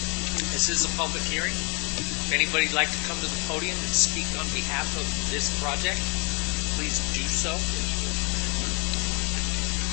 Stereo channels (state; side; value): quieter; right; 32.2 dB